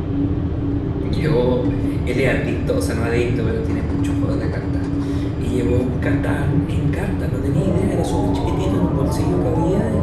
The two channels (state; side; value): identical; both; correlation 1.00